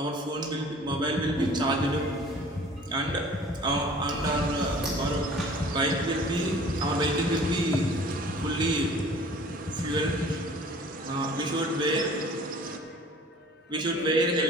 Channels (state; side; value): normal; both; correlation 0.49